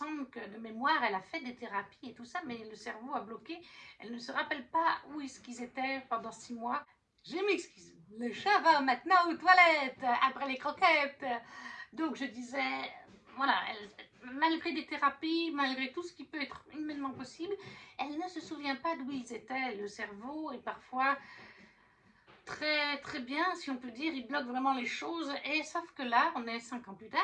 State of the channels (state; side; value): identical; both; correlation 1.00